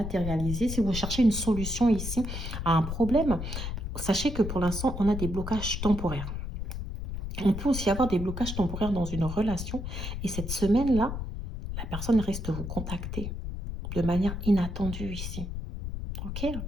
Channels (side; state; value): left; noise; rumble, 5 dB below the sound